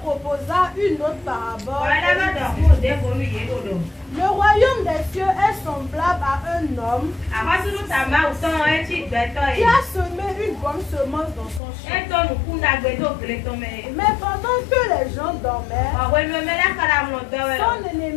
une autre parabole. Le royaume des cieux est semblable à un homme qui a semé une bonne semence dans son champ. Mais pendant que les gens dormaient, son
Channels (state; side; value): drops out; right; at 11.6 s